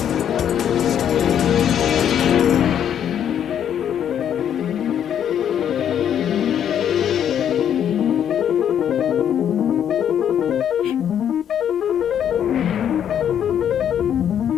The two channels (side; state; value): right; quieter; 9.3 dB